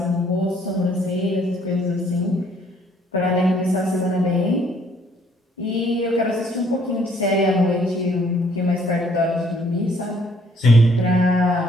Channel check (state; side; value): normal; both; correlation 0.63